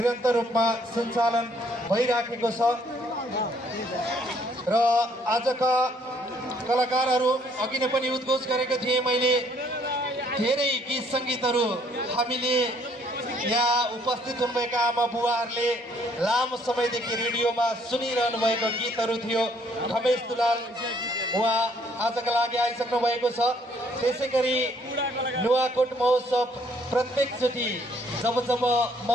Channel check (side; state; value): both; normal; correlation 0.65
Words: रूपमा सञ्चालन भइराखेको छ र आजका कलाकारहरू अघि नै पनि उद्घोष गरेको थिएँ मैले। धेरै गीत सङ्गीतहरू हामीले यहाँ उपस्थित हुनुभएका आमा बुवाहरूले लामो समयदेखि रेडियोमा सुनिरहनु भएको गीतहरू थियो। खमेश दुलाल उहाँ आजका लागि आइसक्नु भएको छ। त्यसै गरी नुवाकोट महोत्सव प्रत्येकचोटि जब जब